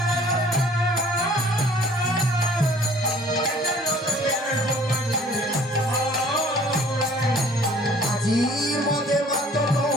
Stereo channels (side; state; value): both; normal; correlation 0.54